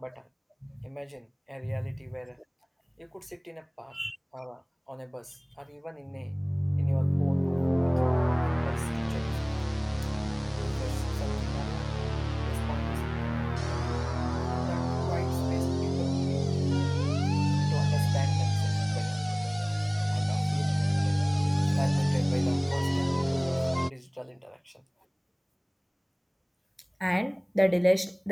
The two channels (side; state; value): both; identical; correlation 1.00